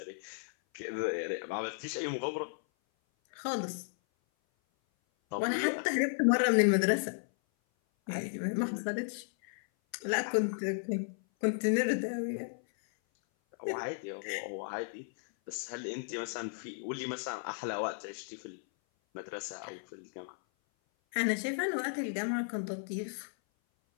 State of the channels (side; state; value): right; silent; 55 dB below the other